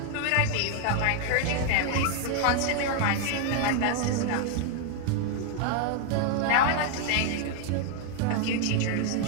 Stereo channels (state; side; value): different; both; correlation 0.00